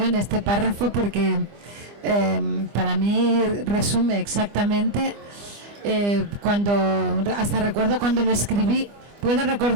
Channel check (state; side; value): late; left; 25 ms